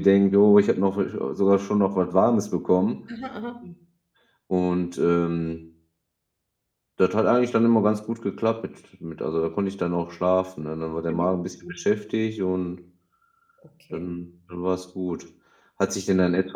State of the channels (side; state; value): both; identical; correlation 1.00